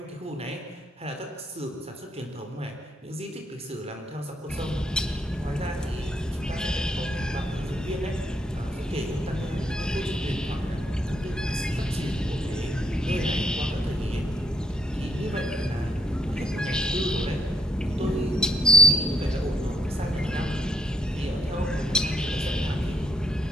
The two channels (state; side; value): normal; both; correlation 0.74